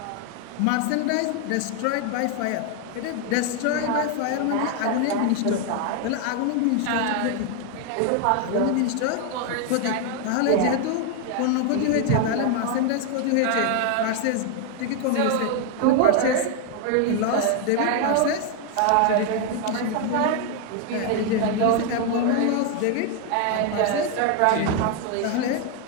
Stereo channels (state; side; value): different; both; correlation 0.01